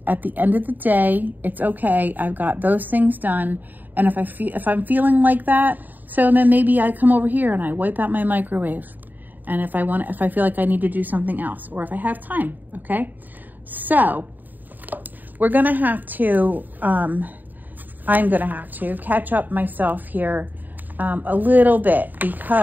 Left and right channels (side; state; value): left; late; 0.087 ms